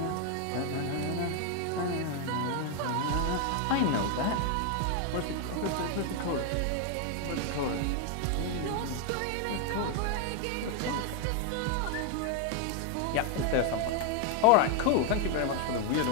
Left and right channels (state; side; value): different; both; correlation 0.01